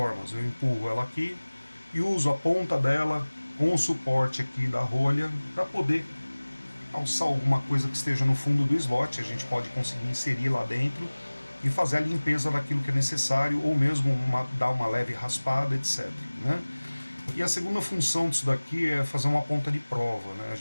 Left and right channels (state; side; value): inverted; both; correlation -1.00